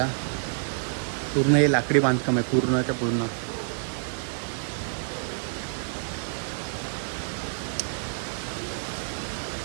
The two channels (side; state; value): left; silent; digital silence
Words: पूर्ण हे लाकडी बांधकाम आहे पूर्णच्या पूर्ण.